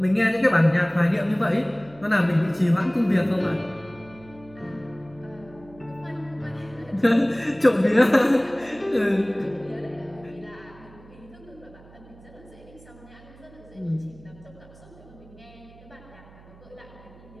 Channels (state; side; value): noise; right; hum, 22 dB below the sound